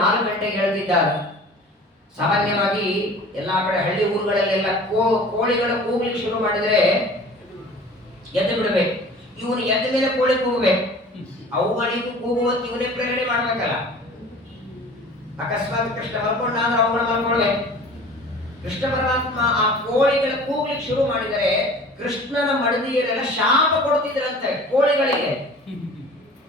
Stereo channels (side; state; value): both; normal; correlation 0.44